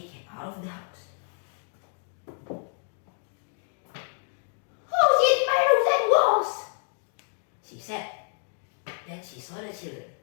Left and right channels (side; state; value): right; silent; 58 dB below the other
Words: came out of the house. Who's in my roofs and walls? She said. Then she saw the children.